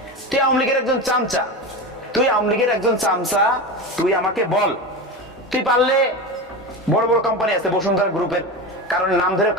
তুই আওয়ামী লীগের একজন চামচা, তুই আমাকে বল, তুই পারলে বড় বড় কোম্পানি আছে বসুন্ধরা গ্রুপের, কারণ নাম ধরে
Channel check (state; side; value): normal; both; correlation 0.23